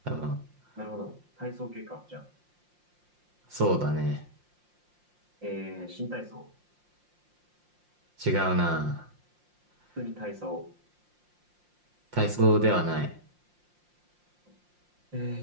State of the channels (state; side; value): late; left; 5.7 ms